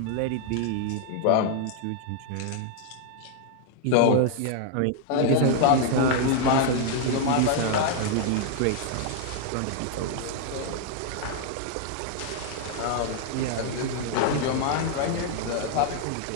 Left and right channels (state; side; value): different; both; correlation 0.00